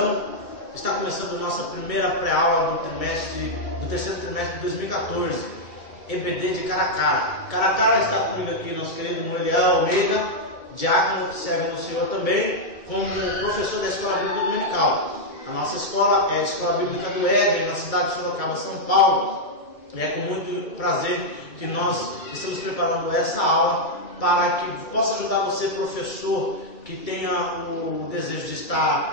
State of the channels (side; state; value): right; late; 2.3 ms